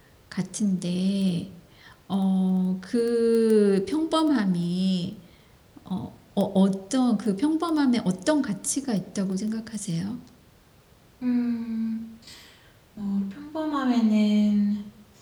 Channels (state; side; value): identical; both; correlation 1.00